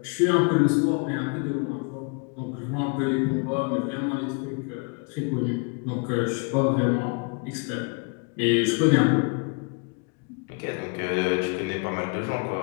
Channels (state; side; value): quieter; right; 34.3 dB